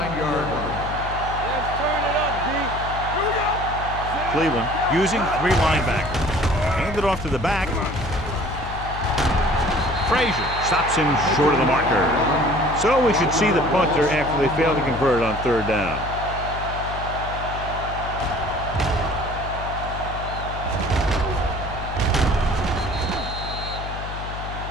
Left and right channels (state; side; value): noise; left; hum, 8 dB below the sound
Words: line. Let's turn it up, D. Here we go. Cleveland using three linebackers. Hand it off to the back. Frazier stops him short of the marker. So we should see the punter after they fail to convert on third down.